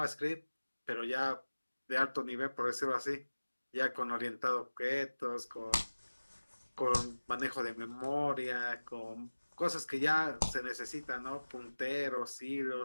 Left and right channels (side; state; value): both; inverted; correlation -1.00